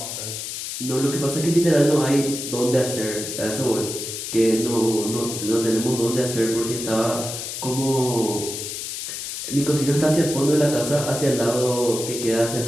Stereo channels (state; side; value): noise; left; hiss, 6 dB below the sound